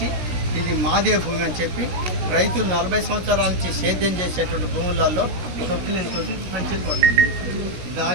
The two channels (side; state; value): left; late; 16 ms